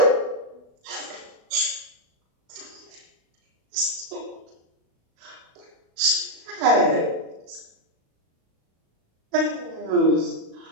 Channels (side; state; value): left; late; 36 ms